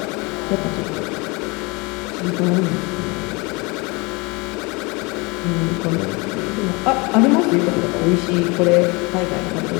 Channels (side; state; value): right; quieter; 27.2 dB